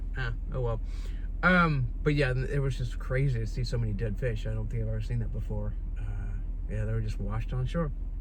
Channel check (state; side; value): identical; both; correlation 1.00